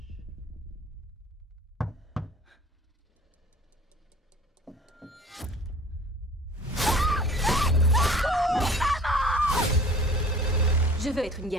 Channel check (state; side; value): normal; both; correlation 0.47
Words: Je veux être une